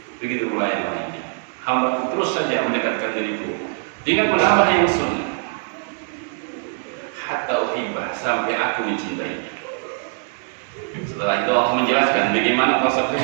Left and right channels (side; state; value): left; silent; 55 dB below the other